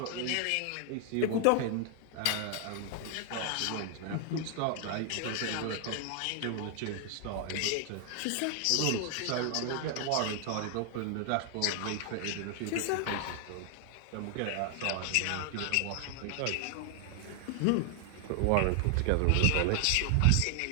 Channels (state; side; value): different; both; correlation 0.00